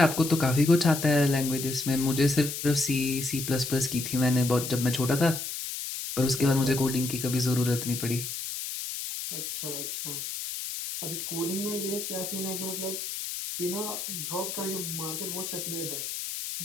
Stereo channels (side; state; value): left; noise; hiss, 6 dB below the sound